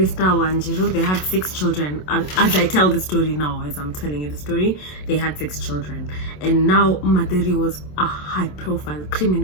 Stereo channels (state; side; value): late; right; 27 ms